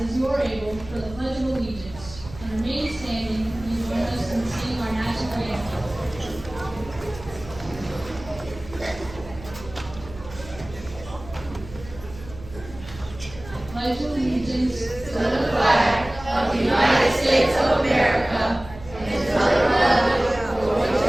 you are able for the Pledge of Allegiance and remain standing and join us in singing our national anthem. I pledge allegiance to the flag of the United States of America and to the republic for which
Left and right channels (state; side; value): noise; right; hum, 16 dB below the sound